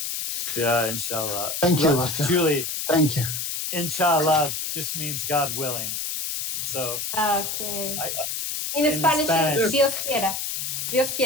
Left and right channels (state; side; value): noise; left; hiss, 3 dB below the sound